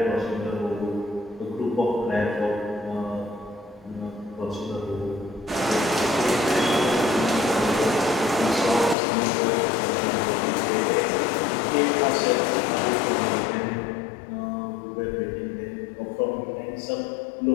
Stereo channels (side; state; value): right; drops out; at 9.0 s